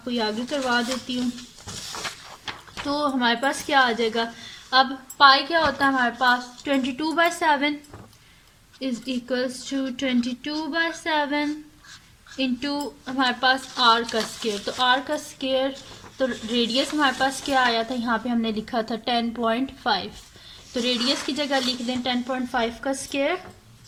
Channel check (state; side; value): identical; both; correlation 1.00